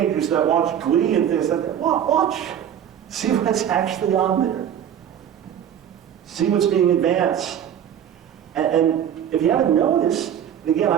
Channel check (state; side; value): quieter; left; 9.4 dB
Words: that watch Glee and things like that. Watch. See what's actually on there. See what's being advanced. And if you haven't noticed, and again,